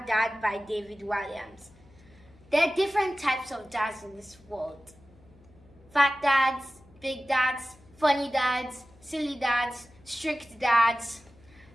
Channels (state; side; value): noise; left; hum, 27 dB below the sound